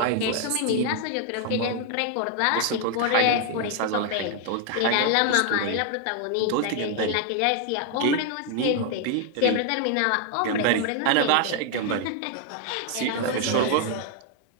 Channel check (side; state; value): both; different; correlation 0.00